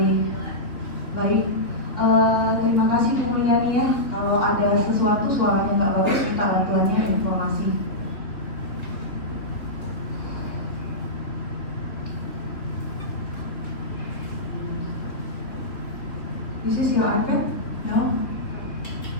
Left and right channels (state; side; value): late; right; 3.5 ms